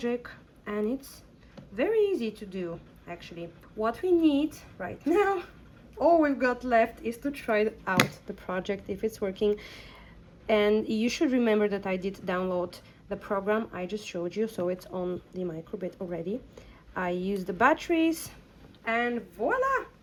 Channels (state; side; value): identical; both; correlation 1.00